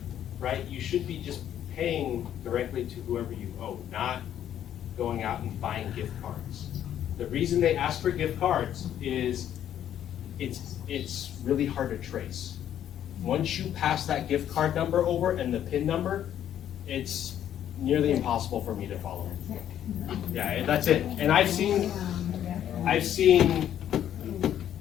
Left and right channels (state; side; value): quieter; right; 10.6 dB